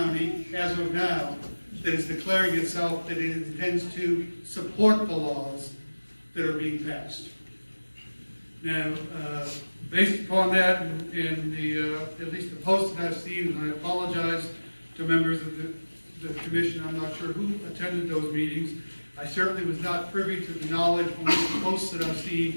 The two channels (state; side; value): inverted; both; correlation -1.00